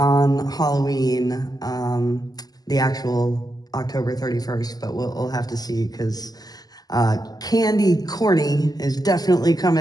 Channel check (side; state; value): right; late; 0.19 ms